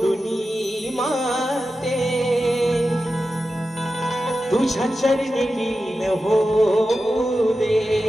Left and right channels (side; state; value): both; normal; correlation 0.92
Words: माते तुझ्या चरणी लीन होऊ दे